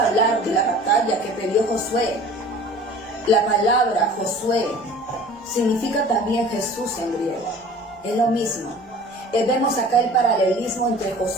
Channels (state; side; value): normal; both; correlation 0.44